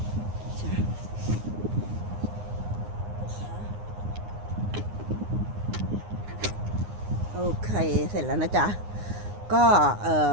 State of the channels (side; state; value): left; late; 9.7 ms